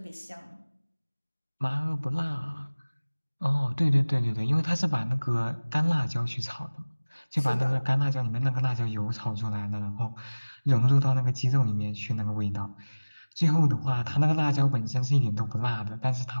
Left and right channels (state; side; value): inverted; both; correlation -1.00